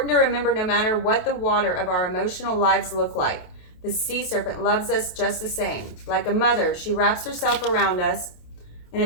to remember, no matter what the water of our emotional lives look like, the Sea Serpent loves us just the same. Like a mother, she wraps herself around us in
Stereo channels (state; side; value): late; right; 28 ms